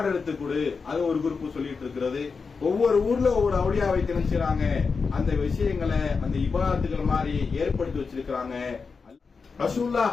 எடுத்து கொடு, அது ஒரு குரூப் சொல்லிட்டு இருக்கிறது. ஒவ்வொரு ஊர்ல ஒவ்வொரு அவுளியாவை திணிச்சுறாங்க. அந்த விஷயங்களை அந்த இபாதத்துகள் மாதிரி ஏற்படுத்தி வச்சிருக்கிறாங்க. ரசூலுல்லாஹ்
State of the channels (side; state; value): right; quieter; 5.0 dB